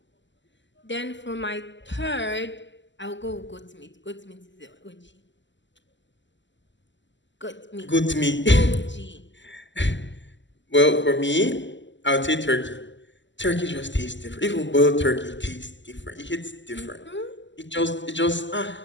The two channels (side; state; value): right; late; 0.54 ms